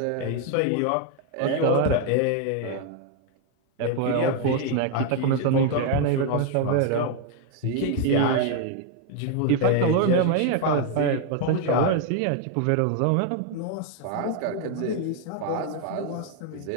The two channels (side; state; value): both; different; correlation 0.01